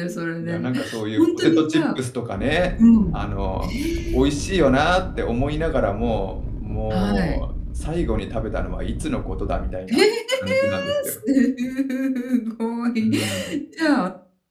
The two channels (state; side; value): identical; both; correlation 1.00